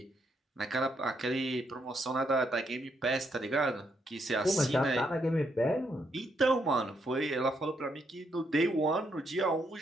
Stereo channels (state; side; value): normal; both; correlation 0.76